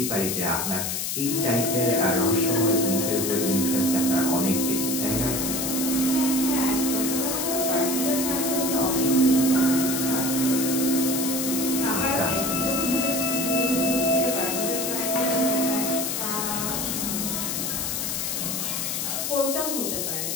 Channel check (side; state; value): left; noise; hiss, 1 dB below the sound